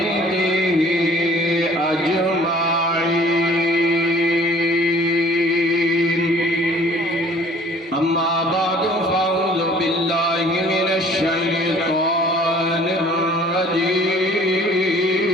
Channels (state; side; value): normal; both; correlation 0.53